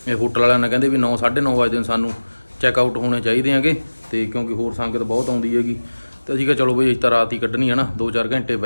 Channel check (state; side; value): inverted; both; correlation -1.00